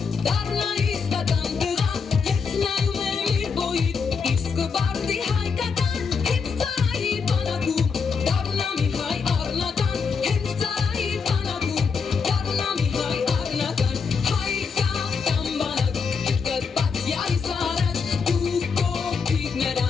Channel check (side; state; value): right; quieter; 5.6 dB